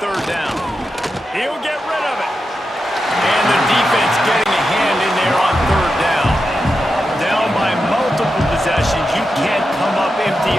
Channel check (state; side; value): normal; both; correlation 0.89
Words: down. He'll get rid of it. And the defense getting a hand in there on third down. Down by multiple possessions. You can't come up empty